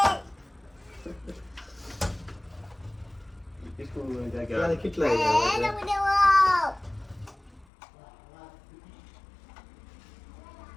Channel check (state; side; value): drops out; right; at 7.7 s